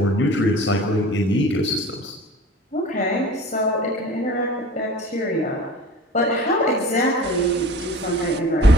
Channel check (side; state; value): both; normal; correlation 0.40